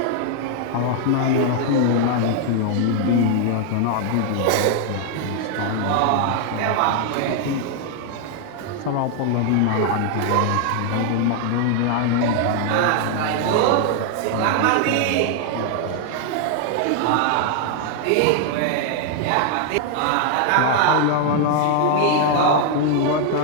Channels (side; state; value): both; different; correlation 0.00